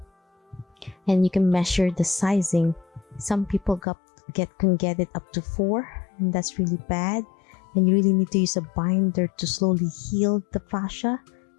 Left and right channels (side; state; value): right; drops out; at 3.8 s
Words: And you can measure the sizing. Some people can get it up to 4, and that's really bad. And you really need to use a binder to slowly heal the fascia